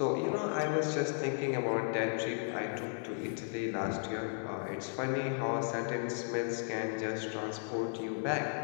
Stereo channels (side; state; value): right; silent; 54 dB below the other